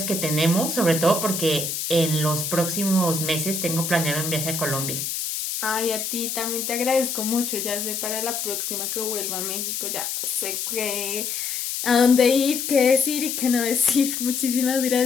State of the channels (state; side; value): noise; left; hiss, 3 dB below the sound